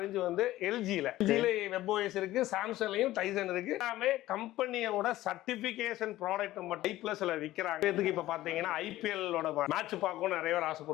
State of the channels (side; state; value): right; quieter; 15.7 dB